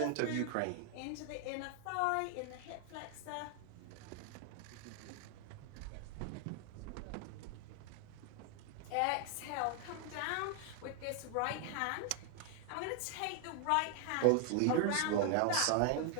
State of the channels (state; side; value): different; both; correlation 0.00